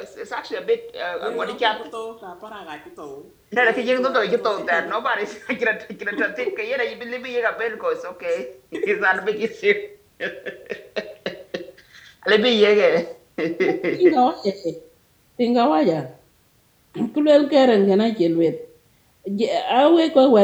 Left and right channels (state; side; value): identical; both; correlation 1.00